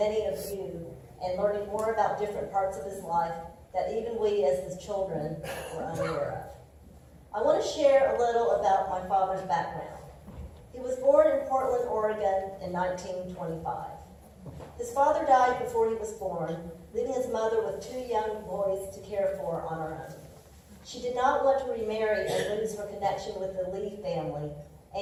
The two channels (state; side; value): identical; both; correlation 1.00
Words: of you and learning more about different parts of his life that even we as his children were unaware of. I want to share a little about my father's background. He was born in Portland, Oregon in 1925. His father died before he was born, leaving his mother with two young boys to care for on her own. She did not want to remarry and lose her connection with the Lee family